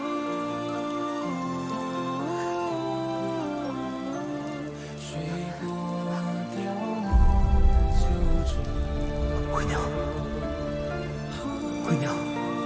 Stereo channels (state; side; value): identical; both; correlation 1.00